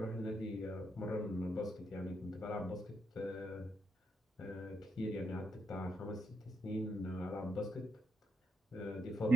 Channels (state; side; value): normal; both; correlation 0.81